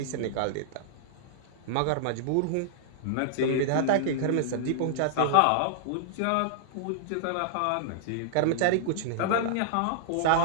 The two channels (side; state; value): both; different; correlation -0.01